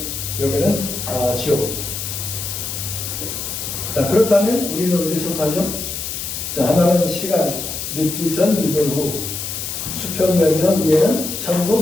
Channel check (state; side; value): noise; left; hiss, 5 dB below the sound